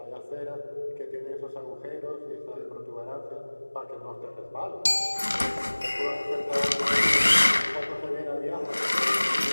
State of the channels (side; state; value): both; inverted; correlation -1.00